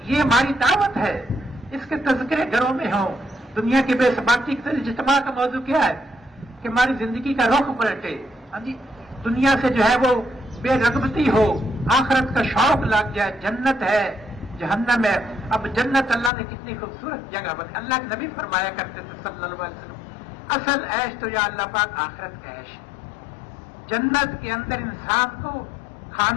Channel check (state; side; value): drops out; right; at 16.3 s